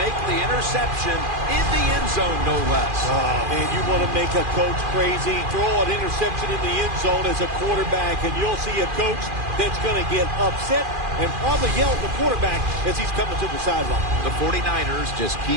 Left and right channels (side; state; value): left; late; 2.4 ms